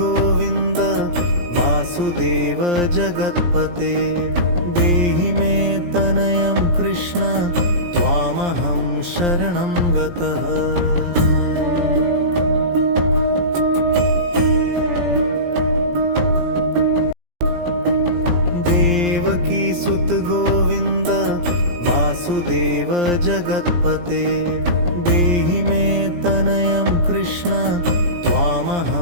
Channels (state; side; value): late; left; 17 ms